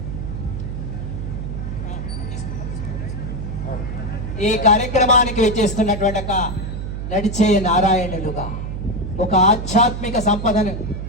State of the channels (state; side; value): noise; right; hum, 5 dB below the sound